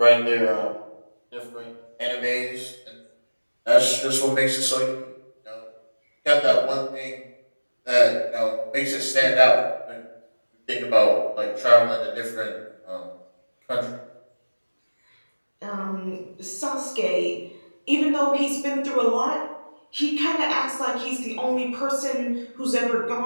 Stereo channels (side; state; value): both; inverted; correlation -1.00